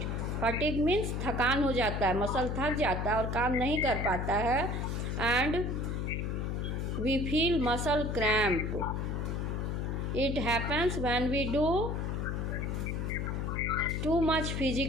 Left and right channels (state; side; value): noise; left; hum, 1 dB below the sound